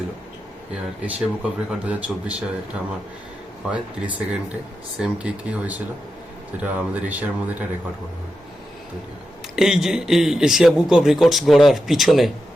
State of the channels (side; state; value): both; normal; correlation 0.88